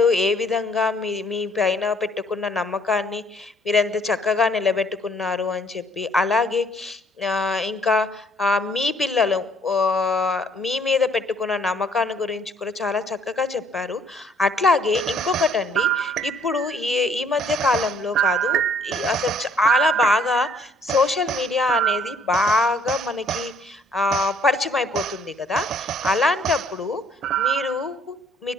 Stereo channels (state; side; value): normal; both; correlation 0.62